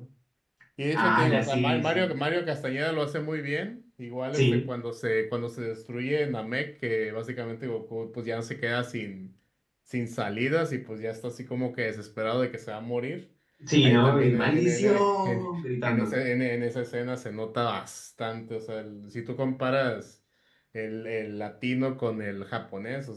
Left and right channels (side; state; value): both; identical; correlation 1.00